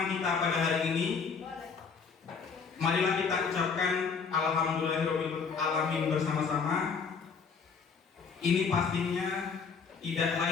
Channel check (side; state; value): right; quieter; 5.6 dB